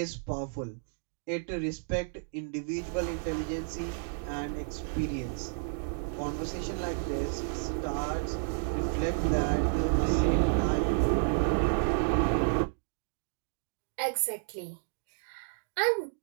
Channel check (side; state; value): left; silent; digital silence